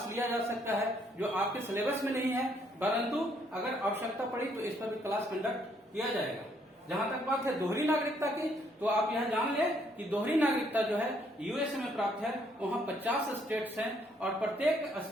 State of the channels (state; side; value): normal; both; correlation 0.69